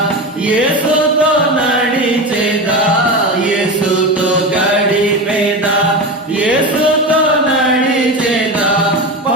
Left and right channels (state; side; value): normal; both; correlation 0.22